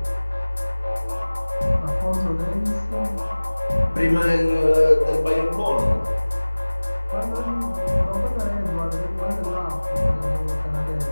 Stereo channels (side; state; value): both; inverted; correlation -1.00